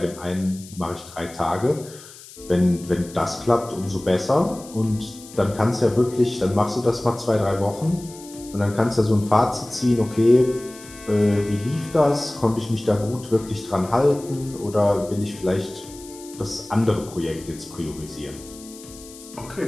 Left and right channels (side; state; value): left; noise; hiss, 18 dB below the sound